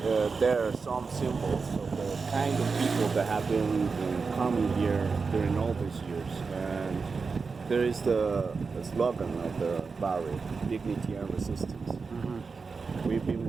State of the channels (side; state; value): left; quieter; 4.8 dB